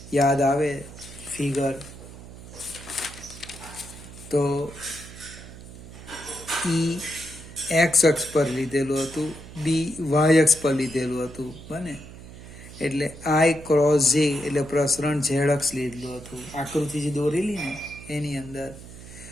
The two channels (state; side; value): noise; right; hum, 15 dB below the sound